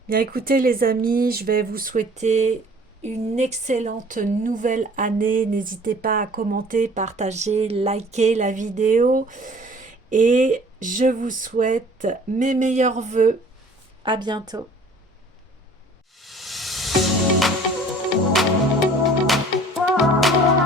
Bien écoutez les amis, je vais vous souhaiter une excellente nouvelle année. N'hésitez pas à commenter, partager, liker la vidéo. Et je vous souhaite mes meilleurs vœux. À bientôt.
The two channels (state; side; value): normal; both; correlation 0.51